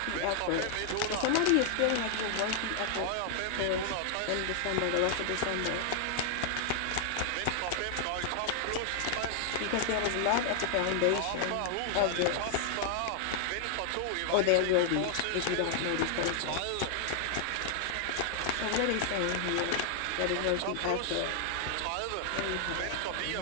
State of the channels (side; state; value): both; different; correlation 0.00